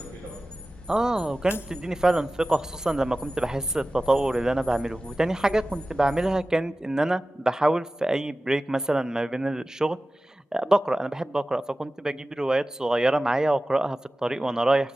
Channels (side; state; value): both; normal; correlation 0.96